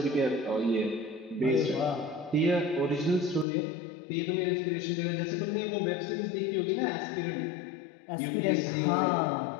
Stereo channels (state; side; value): drops out; right; at 3.5 s